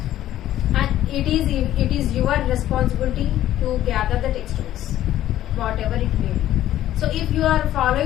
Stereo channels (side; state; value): right; quieter; 12.9 dB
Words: And it is your responsibility to gather the textbooks, whatever it may be. So if you are